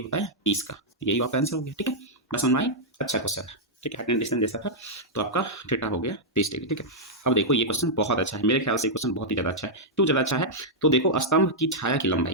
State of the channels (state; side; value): normal; both; correlation -0.06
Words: होता है 30 का, यही आपका आंसर हो गया। ठीक है, बस समझ में आई, अच्छा क्वेश्चन है। ठीक है, हाइट एंड डिस्टेंस जैसा था, तो आपका थीटा हो गया 30 डिग्री। ठीक है, अब देखो ये क्वेश्चन बहुत अच्छा है, मेरे ख्याल से ये क्वेश्चन बहुत ही ज़्यादा अच्छा है। क्यों ज़्यादा अच्छा है, तो देखो स्तंभ की छाया की